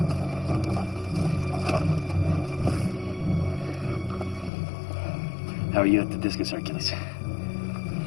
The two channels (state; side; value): drops out; right; at 4.5 s